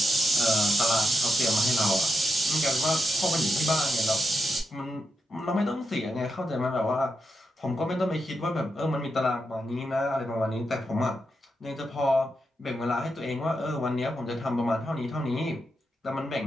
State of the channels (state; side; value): normal; both; correlation 0.84